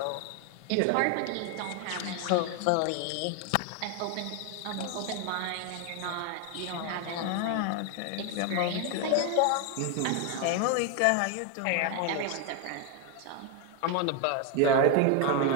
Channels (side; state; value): both; different; correlation 0.01